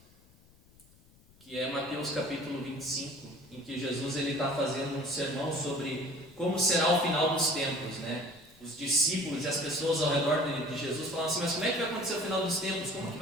Que é Mateus capítulo 25, em que Jesus está fazendo um sermão sobre como será o final dos tempos, né? Os discípulos e as pessoas ao redor de Jesus falam assim: mas como é que vai acontecer o final dos tempos? Como que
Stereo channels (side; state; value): left; noise; rumble, 28 dB below the sound